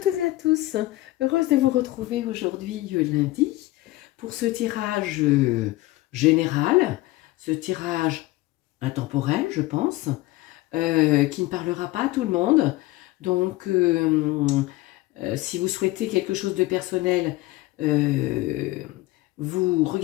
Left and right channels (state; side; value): quieter; right; 18.7 dB